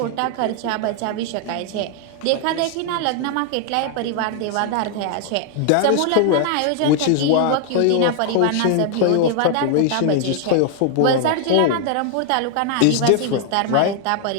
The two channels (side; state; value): both; different; correlation 0.00